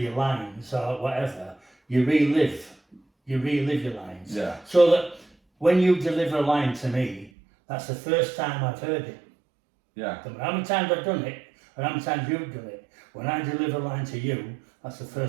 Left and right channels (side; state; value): left; drops out; at 7.3 s